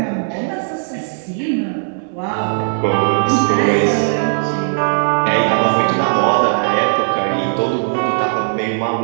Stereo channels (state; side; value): silent; left; digital silence